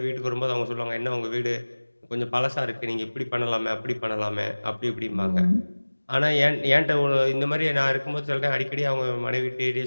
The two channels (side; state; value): both; inverted; correlation -1.00